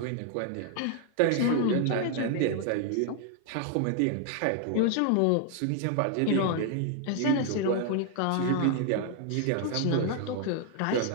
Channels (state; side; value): different; both; correlation 0.00